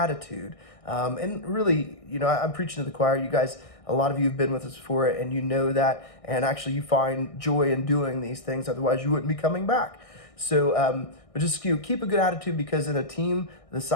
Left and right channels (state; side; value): late; right; 1.6 ms